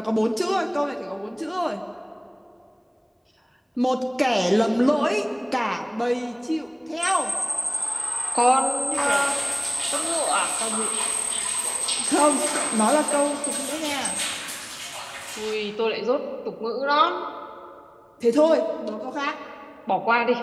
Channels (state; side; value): identical; both; correlation 1.00